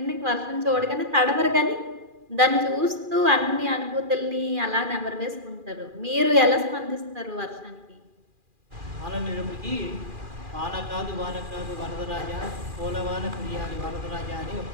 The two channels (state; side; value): late; left; 2.4 ms